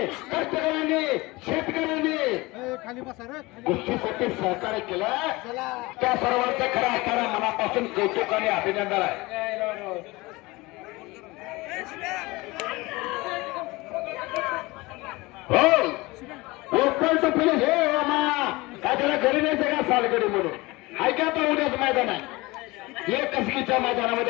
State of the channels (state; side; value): quieter; right; 22.3 dB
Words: कष्टकऱ्यांनी शेतकऱ्यांनी कुस्तीसाठी सहकार्य केलं. त्या सर्वांचं खरं असताना मनापासून कौतुक आणि अभिनंदन आहे. हो ओपन टू फिनिश हे काय त्याला घरी न्यायचं का सालगडी म्हणून ऐका तर उद्याच मैदान आहे. एक कसकीच्या